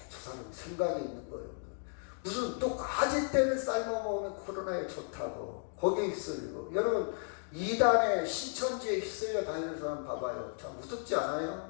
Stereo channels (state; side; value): silent; right; 55 dB below the other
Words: 저 사람 생각이 있는 거예요. 무슨 또 까짓대를 삶아 먹으면 코로나에 좋다고 거기에 휩쓸리고. 여러분 이단에 신천지에 휩쓸려 다니는 사람 봐봐요. 참 무섭지